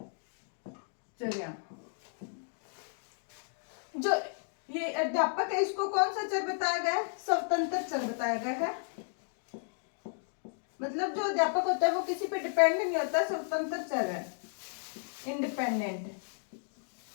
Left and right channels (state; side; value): silent; right; digital silence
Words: जो ये अध्यापक है इसको कौन सा चर बताया गया है, स्वतंत्र चर बताया गया है। मतलब जो अध्यापक होता है वो किसी पे डिपेंड नहीं होता, स्वतंत्र चर है, इंडिपेंडेंट।